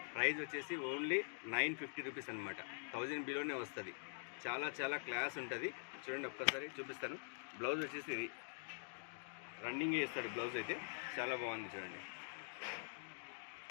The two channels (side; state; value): right; silent; digital silence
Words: ప్రైస్ వచ్చేసి ఓన్లీ 950 రూపీస్ అనమాట. 1000 బిలోనే వస్తుంది. చాలా చాలా క్లాస్ ఉంటుంది. చూడండి, ఒక్కసారి చూపిస్తాను. బ్లౌజ్ వచ్చేసి ఇది రన్నింగ్ చేస్తాడు. బ్లౌజ్ అయితే చాలా బాగుంది. చూడండి,